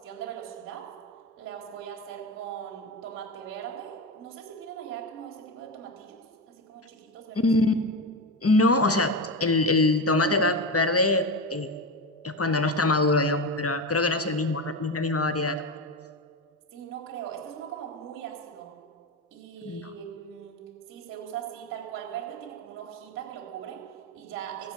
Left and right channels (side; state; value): both; normal; correlation 0.18